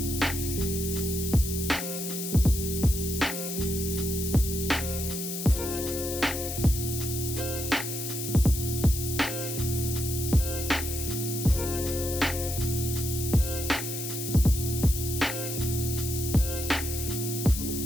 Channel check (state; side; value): noise; left; hiss, 5 dB below the sound